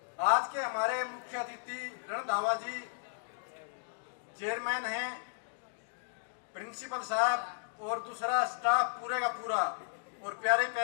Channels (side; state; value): right; silent; digital silence